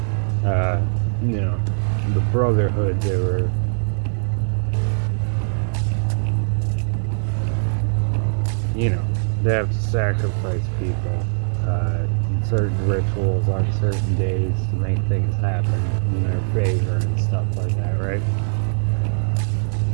Uh, you know, the Brotherhood, you know, they have to sacrifice people in certain rituals on certain days to make things happen in their favor and stuff like that, right?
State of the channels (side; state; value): left; silent; 63 dB below the other